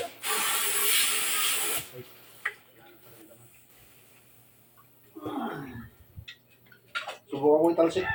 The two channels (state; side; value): identical; both; correlation 1.00